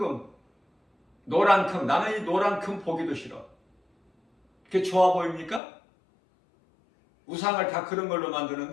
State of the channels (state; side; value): drops out; right; at 5.6 s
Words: 노란 금, 나는 이 노란 금 보기도 싫어. 그게 좋아 보입니까? 우상을 다 그런 걸로